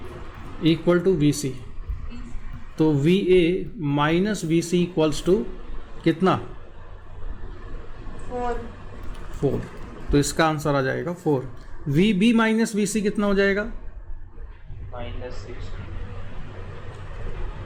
Equal to VC। तो VA minus VC equals to कितना? 4। तो इसका आंसर आ जाएगा 4। VB माइनस VC कितना हो जाएगा?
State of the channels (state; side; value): identical; both; correlation 1.00